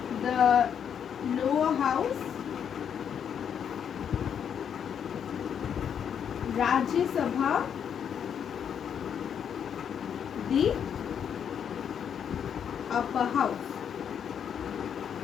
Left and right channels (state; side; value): quieter; right; 8.1 dB